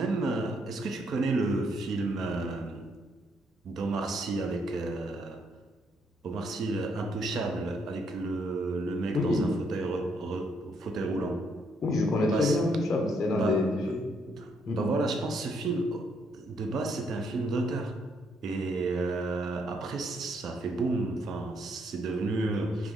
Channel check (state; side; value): normal; both; correlation 0.73